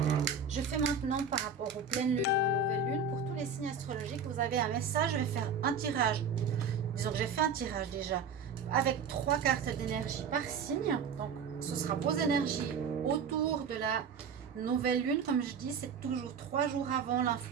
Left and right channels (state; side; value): quieter; left; 5.7 dB